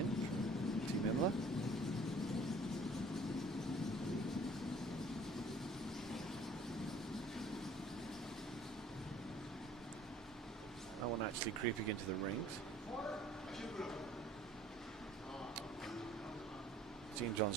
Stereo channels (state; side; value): normal; both; correlation 0.54